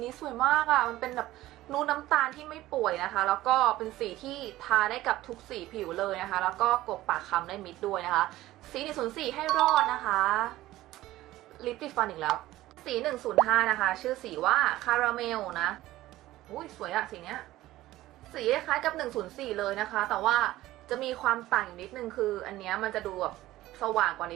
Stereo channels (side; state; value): left; quieter; 16.1 dB